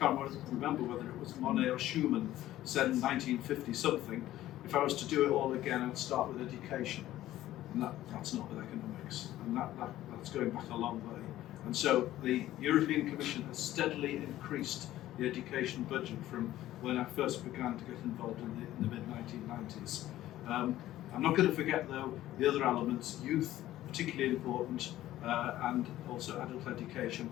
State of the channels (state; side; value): quieter; right; 14.3 dB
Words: remember whether it was Monet or Schumann said in 1950 something, if I was to do it all again, I'd start with education. And that's not with economics, and that's going back a long way. And so the European Commission has steadily increased the education budget from when I first began to get involved in the mid-1990s. I'm not going to forget, though, the other elements, youth, particularly important, and also adult education,